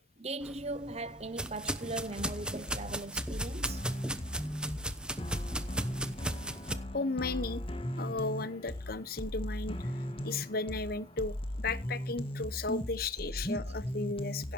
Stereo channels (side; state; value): both; normal; correlation 0.44